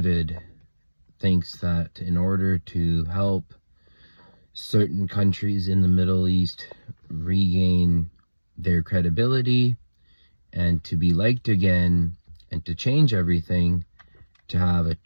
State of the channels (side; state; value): both; inverted; correlation -1.00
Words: thinks that in order to help certain countries in the Middle East regain their credibility and to be liked again and to change everything, to have a